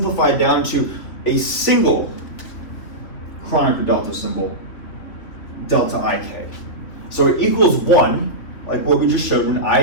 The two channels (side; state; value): right; late; 3.3 ms